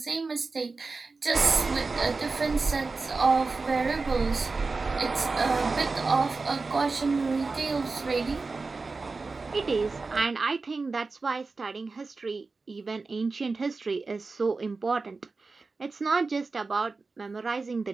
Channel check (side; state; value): left; quieter; 4.0 dB